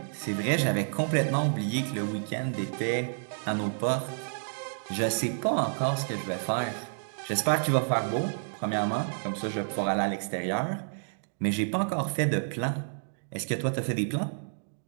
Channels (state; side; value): silent; left; digital silence